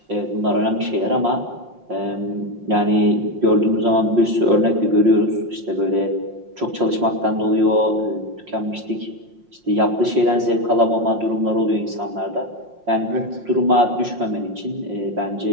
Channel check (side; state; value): left; late; 5.6 ms